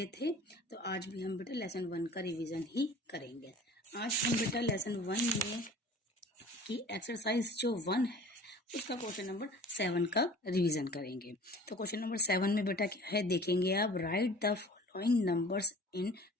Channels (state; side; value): normal; both; correlation 0.45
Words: थे, तो आज भी हम बेटा लेसन 1 का रिवीजन ही करेंगे. आज हम बेटा लेसन 1 में की एक्सरसाइज जो 1 है उसका क्वेश्चन नंबर 7 का रिवीजन करेंगे. तो क्वेश्चन नंबर 7 में बेटा क्या है देखेंगे आप. Right the following numbers in